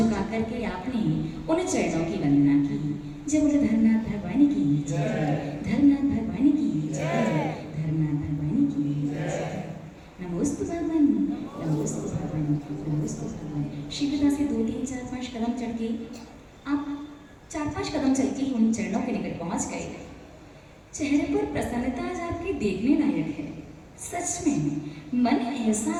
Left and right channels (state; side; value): identical; both; correlation 1.00